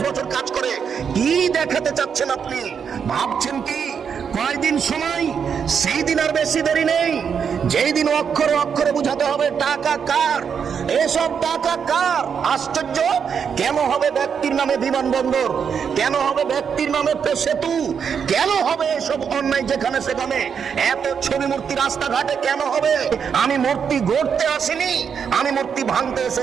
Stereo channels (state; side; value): quieter; left; 7.0 dB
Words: বছর কাজ করে। কি দেখাতে চাচ্ছেন আপনি? ভাবছেন কি কয়দিন সময়? সেই দিন আর বেশি দেরি নেই, যেই দিন অক্ষরে অক্ষরে বুঝাতে হবে টাকা কার, এসব টাকা কার। আশ্চর্য, কেন হবে ব্যক্তির নামে বিমানবন্দর? কেন হবে ব্যক্তির নামে সেতু? কেন হবে এসব অন্যায় যেখানে সেখানে? এত ছবি মূর্তি রাস্তাঘাটে কেন হবে? আমি মূর্তি গড়তে আসিনি, আমি মূর্তি ভাঙতে